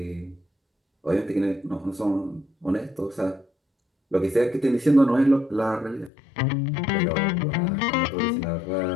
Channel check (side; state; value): right; drops out; at 6.1 s